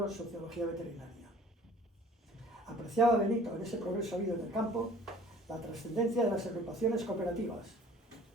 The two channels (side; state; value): both; normal; correlation 0.50